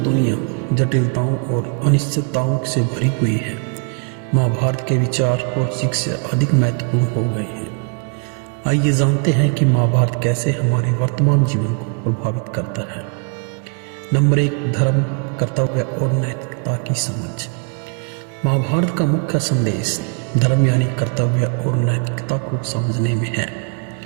दुनिया जटिलताओं और अनिश्चितताओं से भरी हुई है, महाभारत के विचार और शिक्षा अधिक महत्वपूर्ण हो गए हैं। आइए जानते हैं कि महाभारत कैसे हमारे वर्तमान जीवन को प्रभावित करता है। नंबर 1, धर्म, कर्तव्य और नैतिकता की समझ। महाभारत का मुख्य संदेश धर्म यानी कर्तव्य और नैतिकता को समझने में है।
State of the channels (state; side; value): quieter; left; 37.1 dB